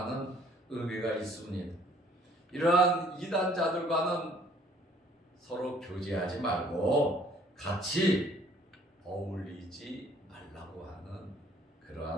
의미가 있습니다. 이러한 이단자들과는 서로 교제하지 말고 같이 어울리지 말라고 하는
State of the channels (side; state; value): both; normal; correlation 0.59